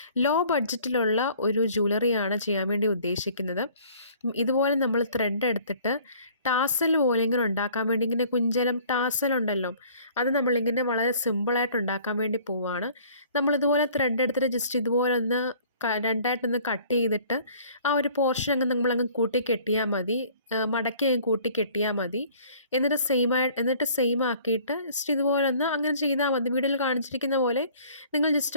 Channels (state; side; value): inverted; both; correlation -0.53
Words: ലോ ബഡ്ജറ്റിലുള്ള ഒരു ജ്വല്ലറിയാണ് ചെയ്യാൻ വേണ്ടി ഉദ്ദേശിക്കുന്നത്. ഇതുപോലെ നമ്മൾ ത്രെഡ് എടുത്തിട്ട് ടാസൽ പോലെ ഇങ്ങനെ ഉണ്ടാക്കാൻ വേണ്ടി, ഇങ്ങനെ കുഞ്ചലം ടാസൽ ഉണ്ടല്ലോ, അത് നമ്മളിങ്ങനെ വളരെ സിമ്പിളായിട്ട് ഉണ്ടാക്കാൻ വേണ്ടി പോവുകയാണ്. നമ്മളിതുപോലെ ത്രെഡ് എടുത്തിട്ട് ജസ്റ്റ് ഇതുപോലെ ഒന്ന് രണ്ടായിട്ടൊന്ന് കട്ട് ചെയ്തിട്ട് ആ ഒരു പോർഷൻ അങ്ങ് നമ്മളങ്ങ് കൂട്ടി കെട്ടിയാൽ മതി. മടക്കി അങ്ങ് കൂട്ടി കെട്ടിയാൽ മതി. എന്നിട്ട് സെയിം ആക്കിയിട്ട് ജസ്റ്റ് ഇതുപോലെ ഒന്ന് അങ്ങനെ ചെയ്താൽ മതി. വീഡിയോയിൽ കാണിച്ചിരിക്കുന്ന പോലെ നിങ്ങൾ